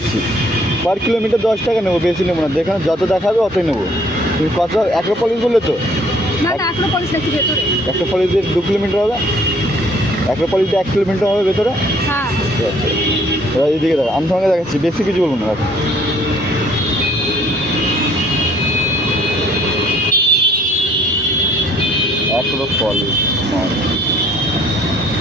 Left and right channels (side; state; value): both; normal; correlation 0.60